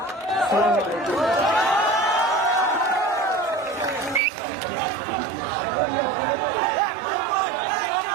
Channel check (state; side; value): drops out; left; at 4.2 s